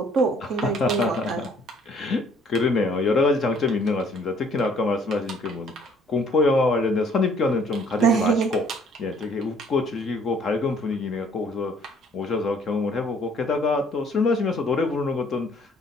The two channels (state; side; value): normal; both; correlation 0.60